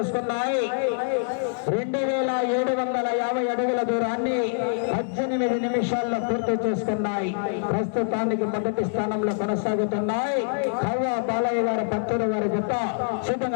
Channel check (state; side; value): silent; right; 62 dB below the other